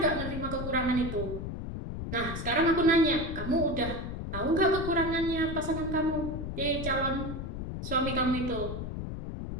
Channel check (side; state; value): left; noise; rumble, 6 dB below the sound